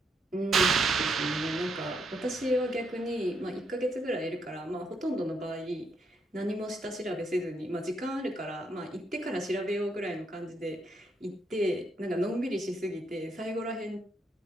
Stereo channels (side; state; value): both; normal; correlation 0.76